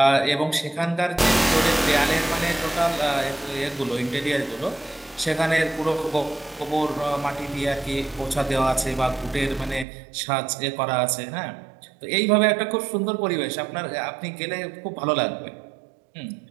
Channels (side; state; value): left; drops out; at 9.9 s